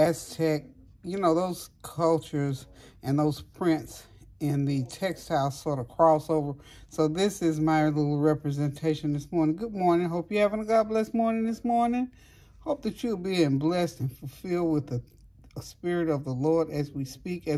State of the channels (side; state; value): both; identical; correlation 1.00